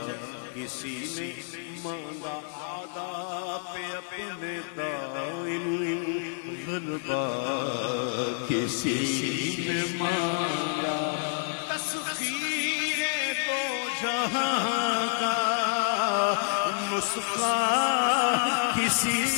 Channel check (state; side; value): silent; right; digital silence